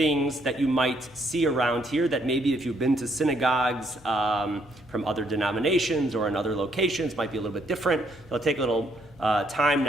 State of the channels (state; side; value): normal; both; correlation 0.71